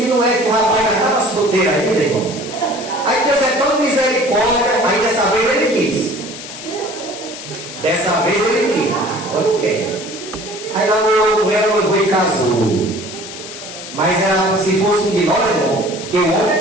não é que o rapaz já estava solteiro ainda, irmão. Aí Deus é tão misericórdia, aí dessa vez ele quis. Dessa vez ele quis, agora eu quero. Aí namorou com ela, noivou e casou. Mas ela, se fosse um de nós, irmão, que o homem é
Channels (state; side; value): noise; left; hiss, 12 dB below the sound